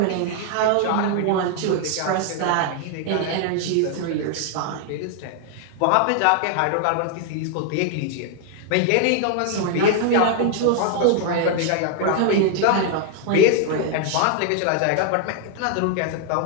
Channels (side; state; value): both; different; correlation 0.00